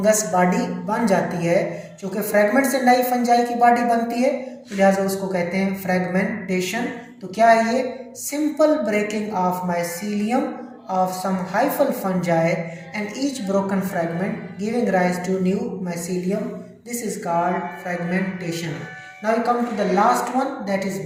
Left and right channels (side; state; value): both; identical; correlation 1.00